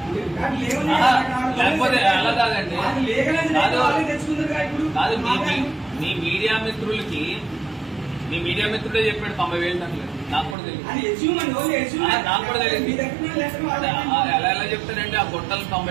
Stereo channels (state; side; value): drops out; left; at 10.6 s